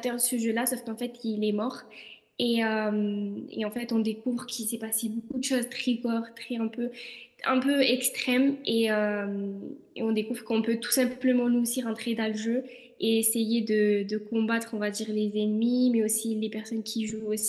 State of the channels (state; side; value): identical; both; correlation 1.00